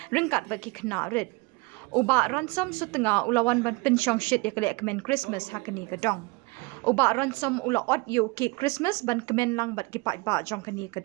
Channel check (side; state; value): left; quieter; 26.5 dB